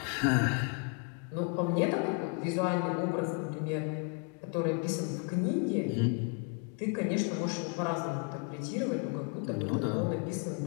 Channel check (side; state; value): right; quieter; 32.5 dB